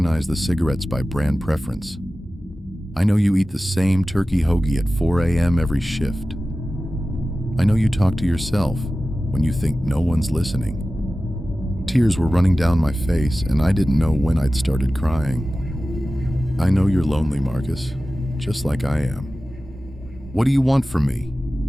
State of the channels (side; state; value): both; normal; correlation 0.95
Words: the cigarettes by brand preference. I know you eat the same turkey hoagie at 4 a.m. every shift. I know you talk to yourself when you think no one's listening. Tears were running down my face, and I didn't know when I'd started crying. I know you're lonely, Marcus, just like I am. What do you want from me?